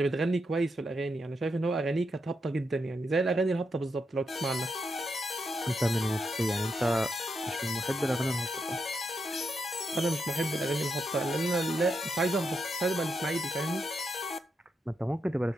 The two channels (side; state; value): both; normal; correlation 0.83